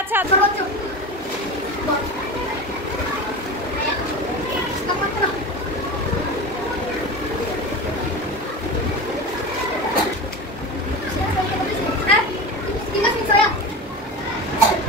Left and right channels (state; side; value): noise; right; hum, 23 dB below the sound